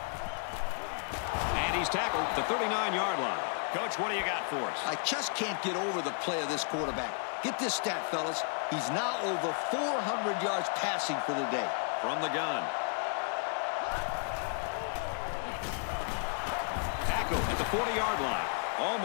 And he's tackled at the 39-yard line. Coach, what do you got for us? I just can't get over the play of this quarterback. Get this stat, fellas. He's now over 400 yards passing for the day. From the gun. Tackle at the 40-yard line.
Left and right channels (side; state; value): right; silent; 56 dB below the other